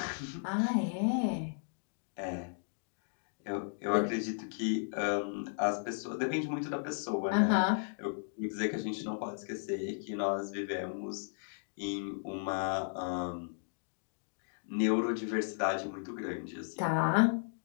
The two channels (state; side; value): silent; right; digital silence